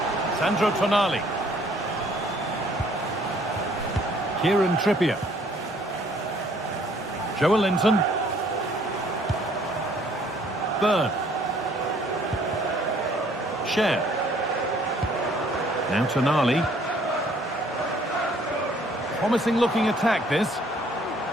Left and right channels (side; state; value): both; normal; correlation 0.61